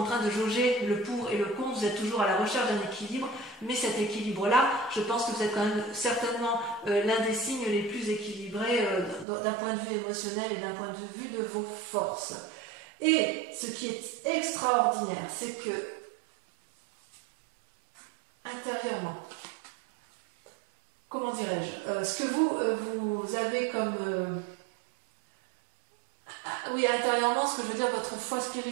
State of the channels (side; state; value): left; drops out; at 9.2 s